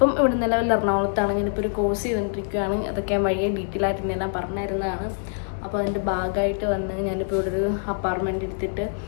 ഇവിടെ നിലവിൽ എറണാകുളത്താണ്. ഞാനിപ്പോൾ ഒരു കോഴ്സ് ചെയ്തുകൊണ്ടിരിക്കുകയാണ്. അതൊക്കെ ഞാൻ വഴിയെ ഡീറ്റെയിൽ ആയിട്ട് എല്ലാം പറഞ്ഞിരുന്നതാണ്. അപ്പോൾ അതിൻ്റെ ഭാഗമായിട്ട് വന്ന് ഞാനിപ്പോൾ ഇവിടെ ഒരു അപ്പാർട്ട്മെൻറ്റ് എടുത്തിട്ട്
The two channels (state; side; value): silent; right; digital silence